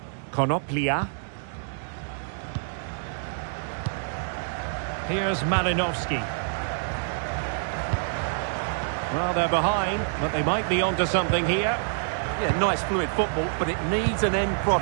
Konoplia. Here's Malinovsky. Well, they're behind, but they might be onto something here. Yeah, nice fluid football, but it needs an end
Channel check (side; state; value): left; silent; digital silence